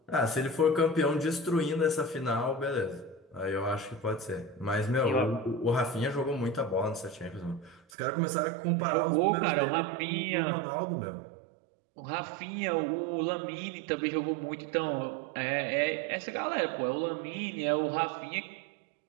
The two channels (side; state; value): left; drops out; at 7.8 s